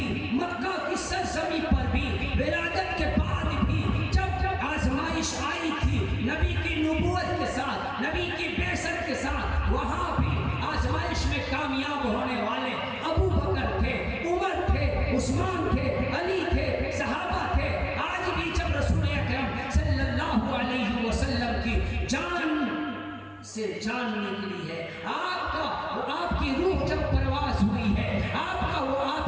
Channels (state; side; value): identical; both; correlation 1.00